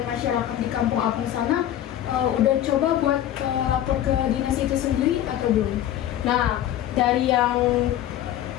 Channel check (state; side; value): quieter; right; 12.0 dB